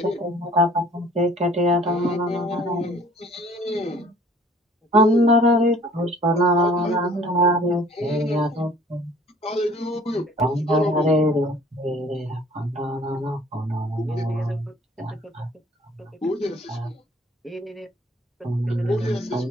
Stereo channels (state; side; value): normal; both; correlation 0.53